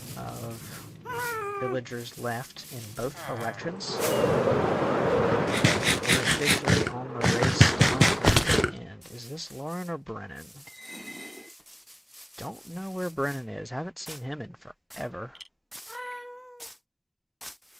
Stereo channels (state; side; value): identical; both; correlation 1.00